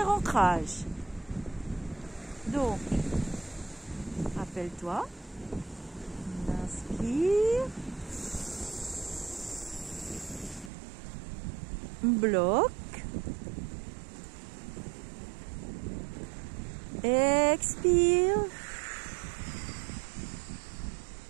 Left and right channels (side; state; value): left; drops out; at 10.7 s